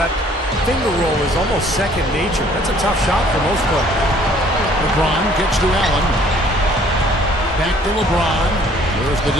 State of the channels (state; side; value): normal; both; correlation 0.58